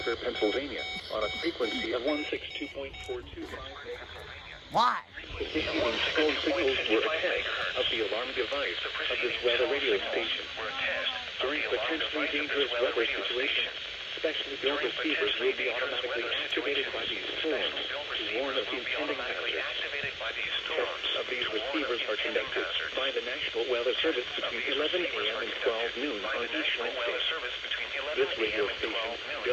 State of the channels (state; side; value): identical; both; correlation 1.00